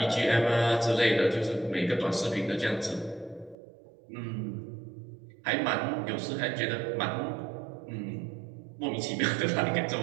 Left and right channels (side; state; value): left; drops out; at 3.6 s